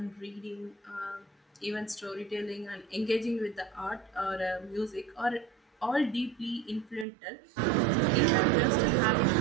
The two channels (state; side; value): drops out; left; at 7.1 s